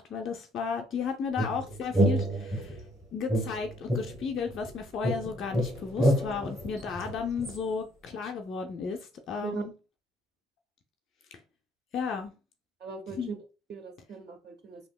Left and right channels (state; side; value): normal; both; correlation 0.66